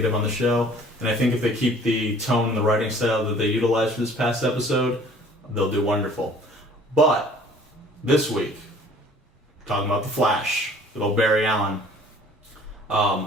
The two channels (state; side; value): normal; both; correlation 0.52